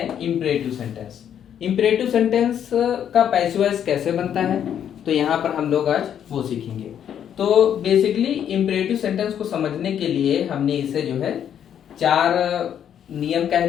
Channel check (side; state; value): right; quieter; 9.3 dB